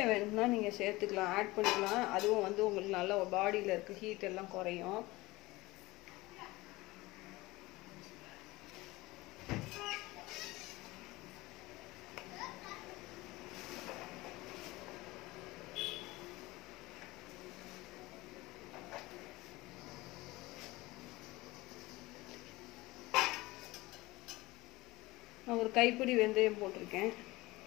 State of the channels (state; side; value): quieter; right; 20.6 dB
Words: வேணும்னா நீங்கள் சேர்த்துக்கலாம், ஆட் பண்ணிக்கலாம். அதுவும் வந்து உங்களுக்கு நல்லா பாடியில் இருக்க ஹீட் எல்லாம் குறையும். நான் ஒரு கைப்பிடி வெந்தயம் போட்டிருக்கேன்.